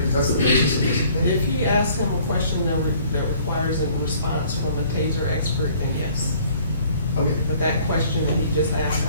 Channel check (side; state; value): both; inverted; correlation -0.56